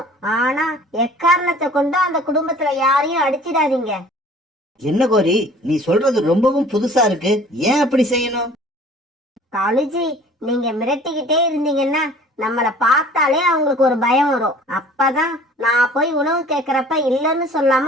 ஆனா எக்காரணத்தை கொண்டு அந்த குடும்பத்துல யாரையும் அடிச்சிடாதீங்க. என்ன கோரி, நீ சொல்றது ரொம்பவும் புதுசா இருக்கு, ஏன் அப்படி செய்யணும்? காலுஜி, நீங்க மிரட்டிக்கிட்டே இருந்தீங்கன்னா நம்மள பார்த்தாலே அவங்களுக்கு ஒரு பயம் வரும். அப்பதான் நான் போய் உணவு கேக்குறப்ப இல்லன்னு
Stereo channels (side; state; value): both; normal; correlation 0.49